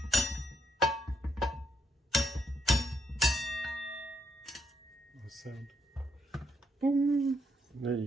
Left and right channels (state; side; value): normal; both; correlation 0.76